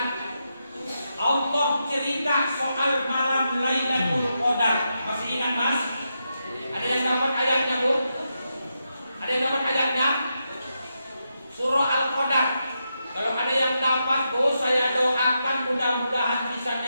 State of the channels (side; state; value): both; inverted; correlation -0.85